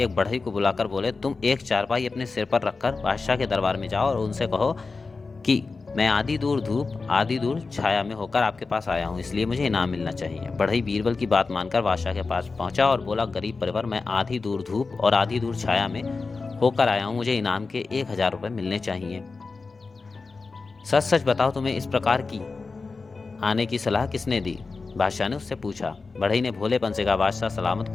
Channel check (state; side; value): quieter; right; 4.1 dB